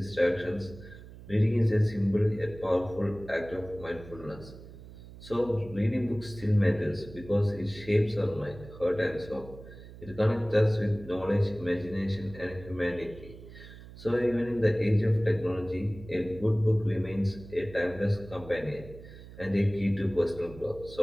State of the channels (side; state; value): right; noise; hum, 17 dB below the sound